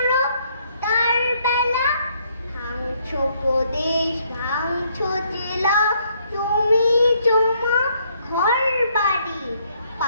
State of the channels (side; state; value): both; inverted; correlation -0.69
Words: তার বেলা ভাঙছো প্রদেশ, ভাঙছো জেলা, জমি জমা ঘর বাড়ি,